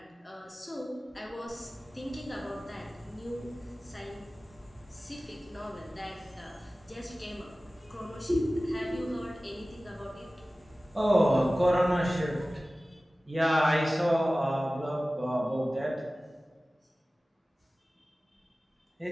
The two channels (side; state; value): both; normal; correlation 0.97